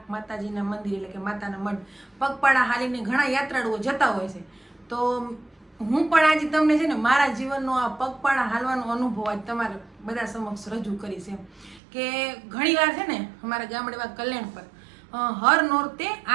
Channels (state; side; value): drops out; left; at 11.8 s